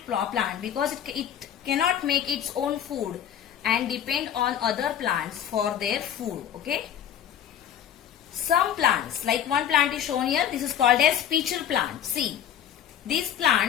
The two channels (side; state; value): right; quieter; 9.7 dB